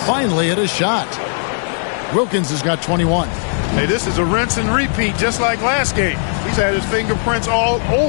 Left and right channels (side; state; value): right; silent; 60 dB below the other